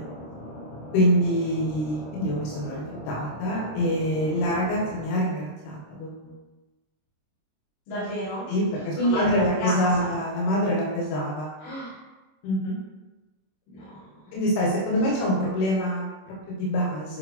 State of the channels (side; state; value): right; late; 26 ms